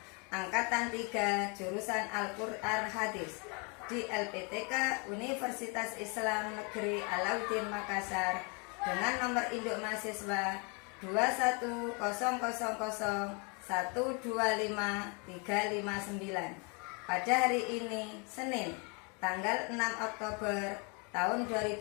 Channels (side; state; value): right; quieter; 33.6 dB